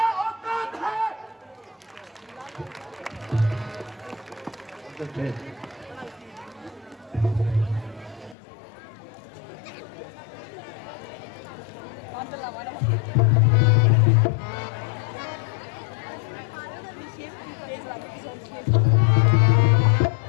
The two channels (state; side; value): drops out; right; at 8.3 s